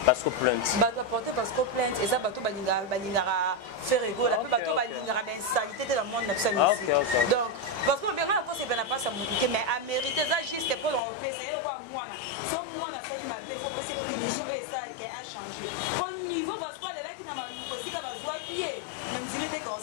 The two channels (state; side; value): drops out; right; at 11.0 s